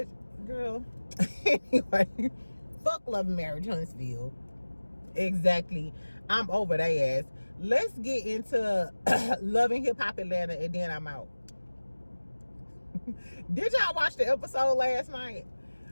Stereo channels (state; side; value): inverted; both; correlation -1.00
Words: girl. Anyway, fuck Love and Marriage Huntsville. Exactly. I'm over their ass. Let's get into Love and Hip Hop Atlanta and then I'm out. Did y'all watch the episode last night?